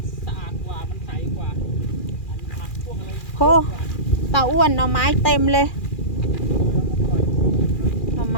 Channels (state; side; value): late; right; 2.4 ms